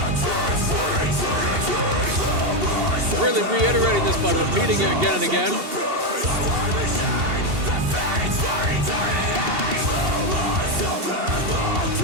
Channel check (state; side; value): late; left; 2.7 ms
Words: Really reiterating this by repeating it again and again.